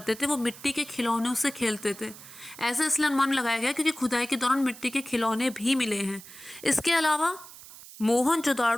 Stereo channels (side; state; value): right; noise; hiss, 17 dB below the sound